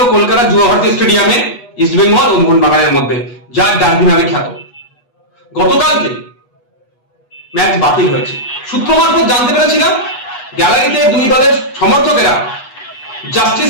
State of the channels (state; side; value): late; right; 8.2 ms